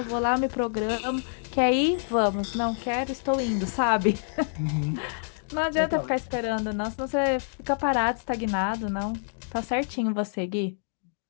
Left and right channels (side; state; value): right; silent; digital silence